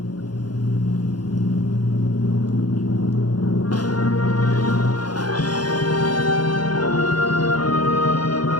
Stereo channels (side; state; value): right; late; 0.70 ms